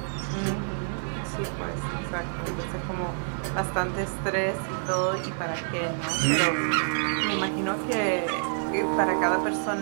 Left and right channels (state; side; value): silent; left; digital silence